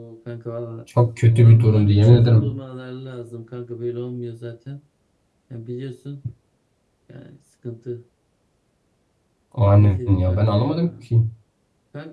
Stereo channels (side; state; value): both; identical; correlation 1.00